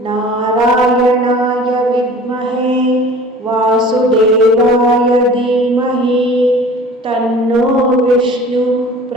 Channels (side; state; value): both; normal; correlation 0.44